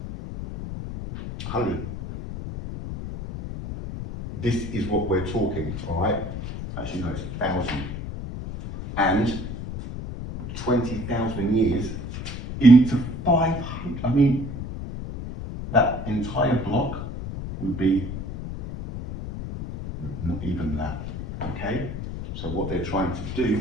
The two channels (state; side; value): noise; left; rumble, 7 dB below the sound